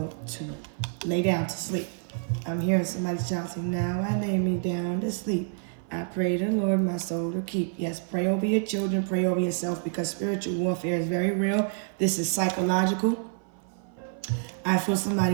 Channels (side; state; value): left; silent; 55 dB below the other